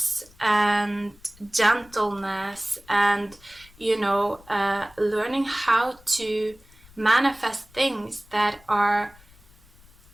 and gentleness and, you know, learning how to manifest things that are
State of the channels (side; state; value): left; noise; rumble, 26 dB below the sound